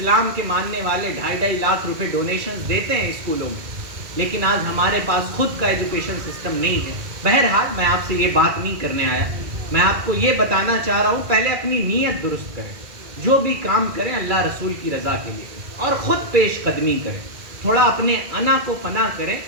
کے ماننے والے 2.5 لاکھ روپے ڈونیشنز دیتے ہیں اسکولوں میں، لیکن آج ہمارے پاس خود کا ایجوکیشن سسٹم نہیں ہے. بہرحال میں آپ سے یہ بات نہیں کرنے آیا، میں آپ کو یہ بتانا چاہ رہا ہوں پہلے اپنی نیت درست کریں. جو بھی کام کریں اللہ رسول کی رضا کے لیے اور خود پیش قدمی کریں. تھوڑا اپنے انا کو فنا کریں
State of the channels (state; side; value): late; left; 2.0 ms